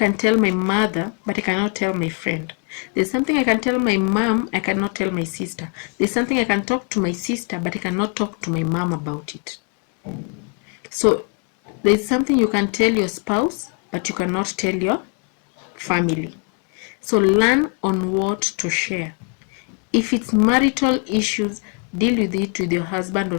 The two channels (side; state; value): right; quieter; 38.5 dB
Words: tell my mother, but I cannot tell my friend. There's something I can tell my mom, I cannot tell my sister. There's something I can talk to my sister, but I cannot talk to my mom about it. So there's something you can tell your spouse, but you cannot tell your family. So learn on what to share. If it's marital issues, deal with it with your husband